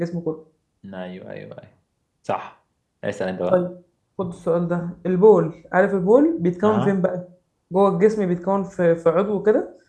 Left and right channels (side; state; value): both; identical; correlation 1.00